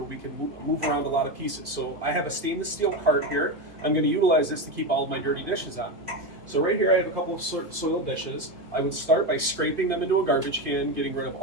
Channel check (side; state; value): left; late; 2.5 ms